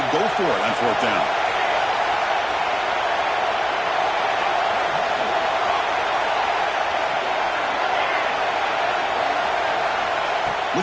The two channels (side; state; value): both; identical; correlation 1.00